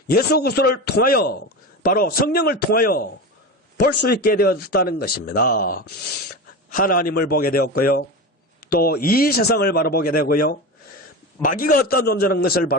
예수 그리스도를 통하여 바로 성령을 통하여 볼 수 있게 되었다는 것입니다. 하나님을 보게 되었고요. 또 이 세상을 바라보게 되고요. 마귀가 어떠한 존재라는 것을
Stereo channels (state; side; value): normal; both; correlation 0.24